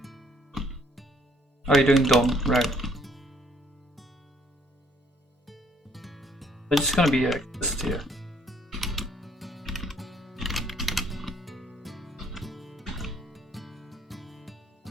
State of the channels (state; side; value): normal; both; correlation 0.65